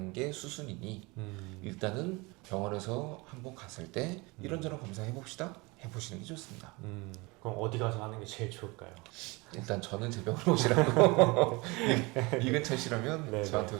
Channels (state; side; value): quieter; left; 25.4 dB